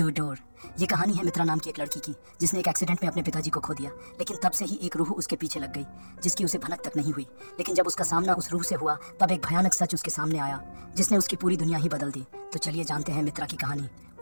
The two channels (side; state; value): both; inverted; correlation -1.00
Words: door. ये कहानी है मित्रा नाम की एक लड़की की जिसने एक एक्सीडेंट में अपने पिताजी को खो दिया, लेकिन तब से ही एक रूह उसके पीछे लग गई जिसकी उसे भनक तक नहीं हुई। लेकिन जब उसका सामना उस रूह से हुआ तब एक भयानक सच उसके सामने आया जिसने उसकी पूरी दुनिया ही बदल दी। तो चलिए जानते हैं मित्रा की कहानी,